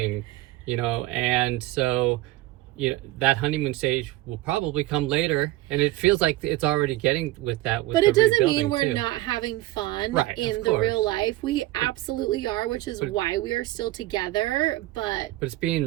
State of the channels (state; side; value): quieter; left; 17.6 dB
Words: you know. And so, you know, that honeymoon stage will probably come later, and it feels like it's already getting with that. But it doesn't mean we're not having fun in the real life. We absolutely are, which is why we are still together. But it's